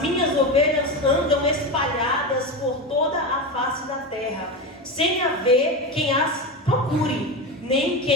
minhas ovelhas andam espalhadas por toda a face da terra, sem haver quem as procure, nem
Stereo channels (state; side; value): normal; both; correlation 0.19